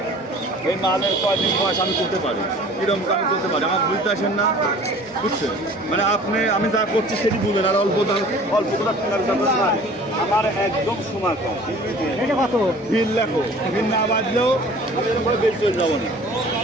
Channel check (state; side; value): normal; both; correlation 0.47